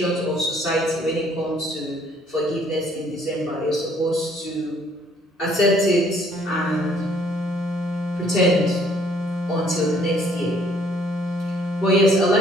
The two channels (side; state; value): both; normal; correlation 0.62